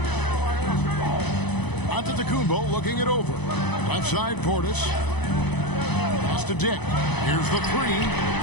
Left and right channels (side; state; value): right; late; 0.99 ms